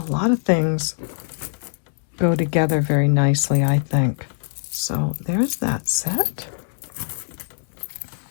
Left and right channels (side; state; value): right; silent; digital silence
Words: lot of things go together very nicely, I think. So there's that set.